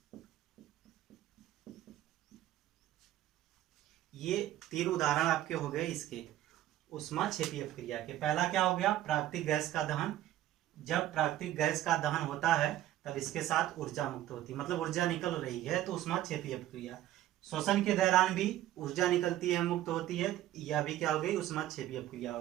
ये 3 उदाहरण आपके हो गए इसके ऊष्माक्षेपी अपक्रिया के। पहला क्या हो गया, प्राकृतिक गैस का दहन। जब प्राकृतिक गैस का दहन होता है तब इसके साथ ऊर्जा मुक्त होती है, मतलब ऊर्जा निकल रही है, तो ऊष्माक्षेपी अपक्रिया। शोषण के दौरान भी ऊर्जा निकलती है, मुक्त होती है, यह भी क्या हो गई, ऊष्माक्षेपी अपक्रिया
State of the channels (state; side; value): quieter; left; 13.5 dB